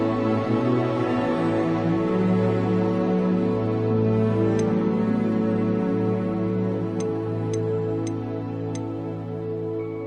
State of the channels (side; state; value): both; identical; correlation 1.00